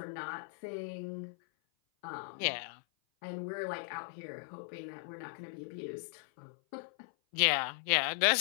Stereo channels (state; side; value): silent; right; 53 dB below the other